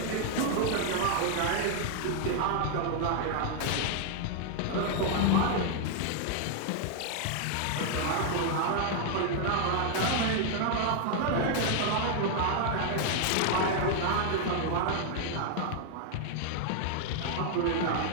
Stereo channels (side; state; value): both; different; correlation 0.00